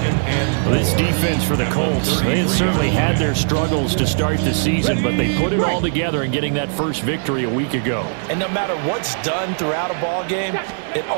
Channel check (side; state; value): left; silent; digital silence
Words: This defense for the Colts, they had certainly had their struggles to start the season, but they put it all together in getting that first victory a week ago. And no matter what's done throughout a ball game, it